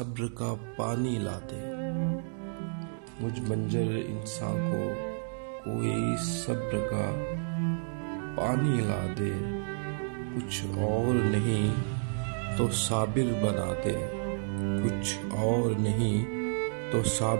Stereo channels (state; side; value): silent; left; digital silence